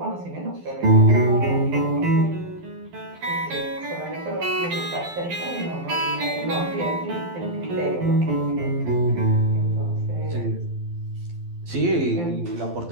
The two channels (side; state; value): left; late; 12 ms